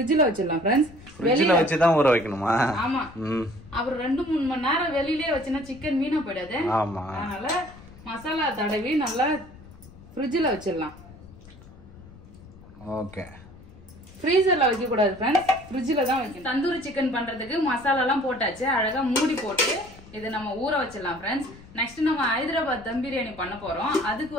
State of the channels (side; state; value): left; noise; rumble, 20 dB below the sound